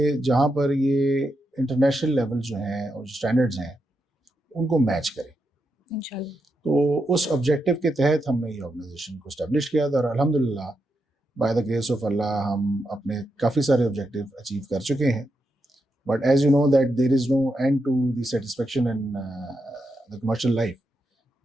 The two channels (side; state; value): both; normal; correlation 0.84